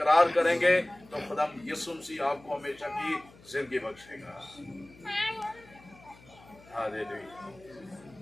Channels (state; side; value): noise; left; hum, 24 dB below the sound